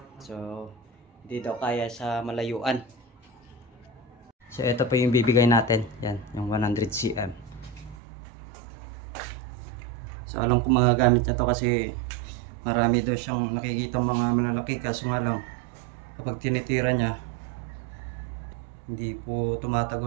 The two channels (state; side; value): drops out; left; at 8.0 s